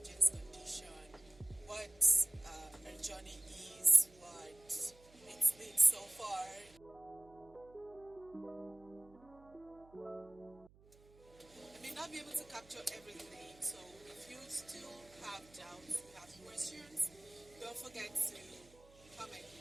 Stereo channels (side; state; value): right; noise; hum, 25 dB below the sound